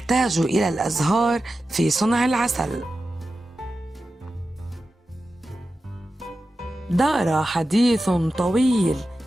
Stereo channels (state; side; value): normal; both; correlation 0.92